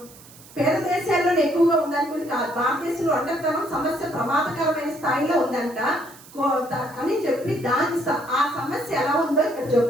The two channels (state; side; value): noise; right; hiss, 21 dB below the sound